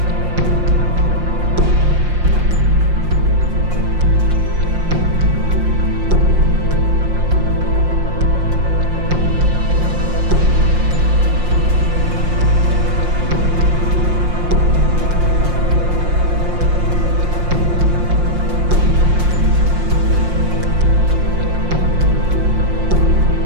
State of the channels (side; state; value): left; late; 5.7 ms